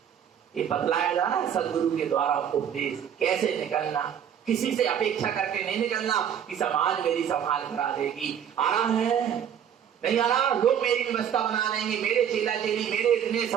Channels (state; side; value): quieter; left; 8.8 dB